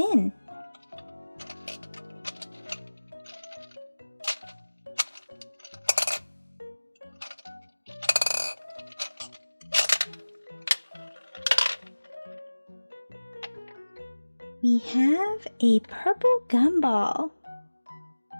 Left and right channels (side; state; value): both; inverted; correlation -1.00